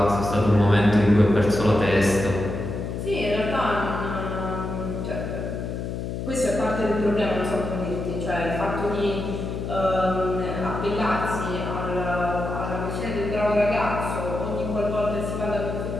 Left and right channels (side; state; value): left; noise; hum, 5 dB below the sound